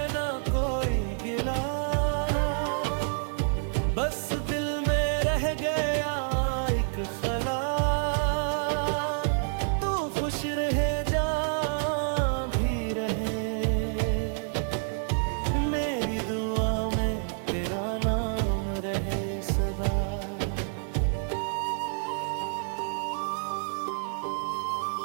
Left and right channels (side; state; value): left; silent; 59 dB below the other